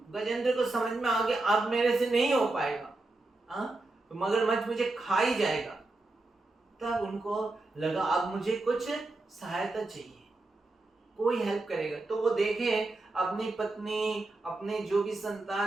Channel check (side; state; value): left; quieter; 3.0 dB